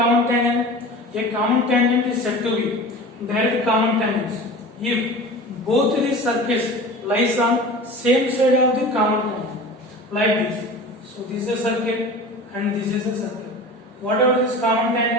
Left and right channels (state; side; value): normal; both; correlation 0.36